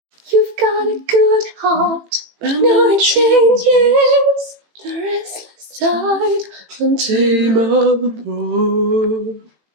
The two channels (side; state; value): left; late; 18 ms